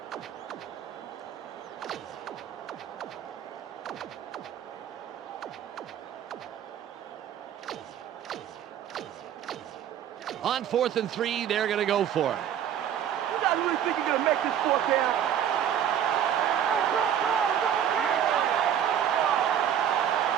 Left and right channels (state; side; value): quieter; left; 9.6 dB